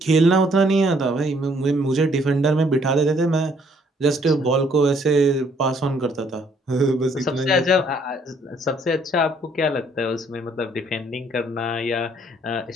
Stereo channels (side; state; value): both; normal; correlation 0.65